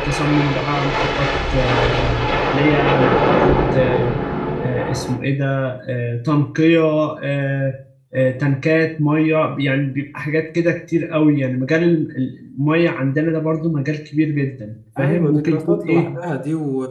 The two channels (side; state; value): both; identical; correlation 1.00